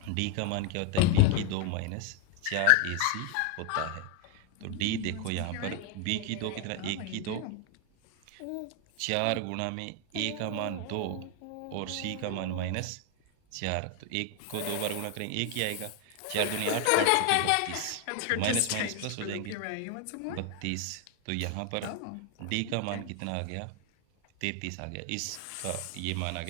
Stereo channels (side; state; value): both; different; correlation 0.01